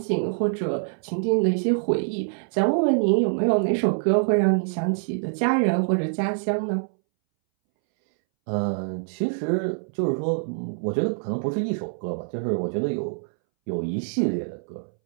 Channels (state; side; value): silent; left; 62 dB below the other